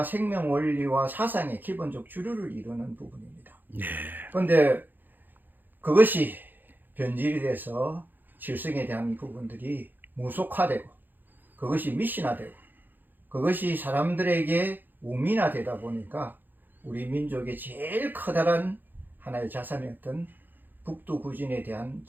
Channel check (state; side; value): late; left; 0.089 ms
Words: 생명 원리와 사상의 기본적 주류를 이루는 부분입니다. 그런데 그것이 변질이 돼서 칠성에 대한 부분들이 무속화되고 그것이 미신화되고 그것이 사람들에게 우민화되다 보니까 우리 민족의 제일 커다란 하나의 자산이었던 북두구진에 대한